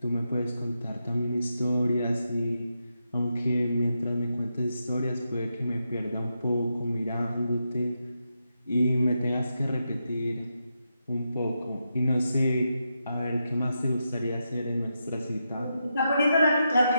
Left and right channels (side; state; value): both; inverted; correlation -0.85